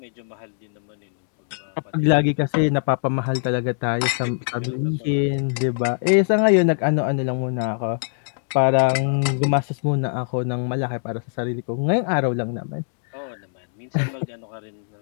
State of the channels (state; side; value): silent; right; digital silence